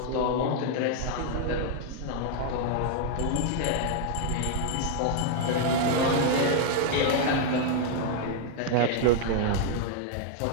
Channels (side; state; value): both; different; correlation 0.00